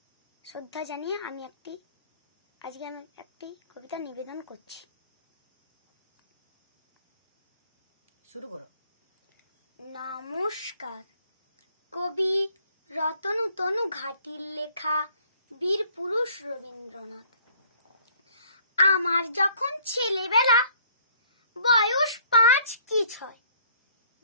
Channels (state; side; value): inverted; both; correlation -0.59